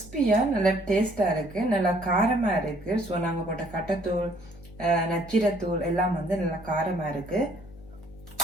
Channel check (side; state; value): left; noise; hum, 19 dB below the sound